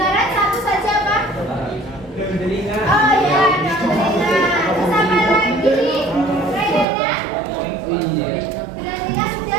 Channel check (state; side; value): drops out; left; at 6.9 s